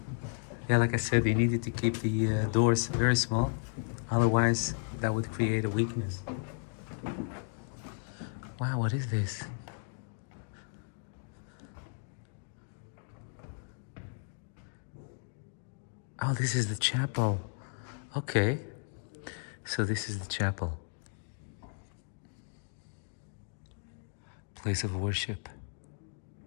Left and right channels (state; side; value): silent; right; 55 dB below the other